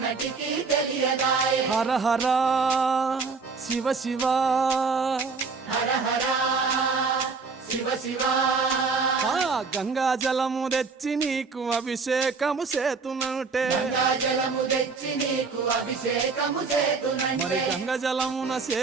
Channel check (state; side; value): quieter; left; 4.7 dB